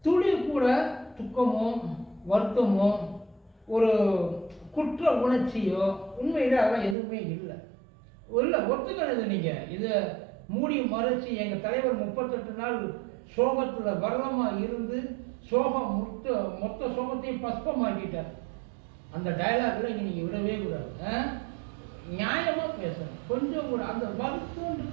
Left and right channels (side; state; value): left; drops out; at 7.0 s